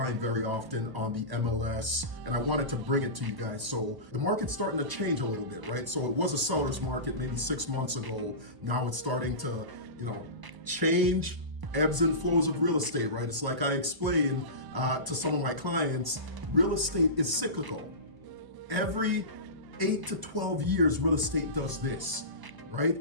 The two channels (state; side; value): late; left; 1.0 ms